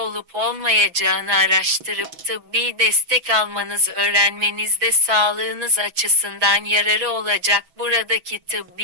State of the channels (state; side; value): late; left; 6.1 ms